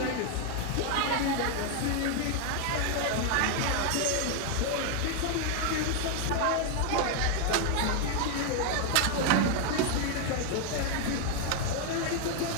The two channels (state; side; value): different; both; correlation 0.00